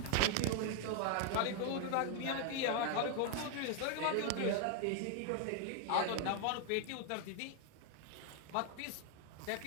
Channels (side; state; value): both; different; correlation 0.01